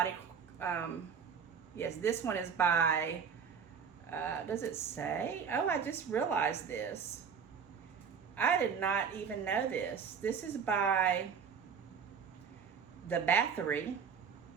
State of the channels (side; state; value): left; quieter; 6.7 dB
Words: yes, this one is by, does it say? Oh, I just realized this. I did not even know this. This is by the Battery,